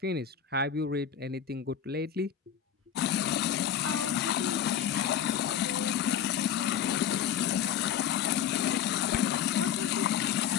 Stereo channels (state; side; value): quieter; right; 9.1 dB